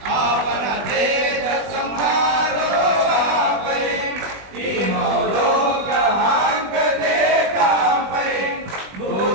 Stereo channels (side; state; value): left; late; 20 ms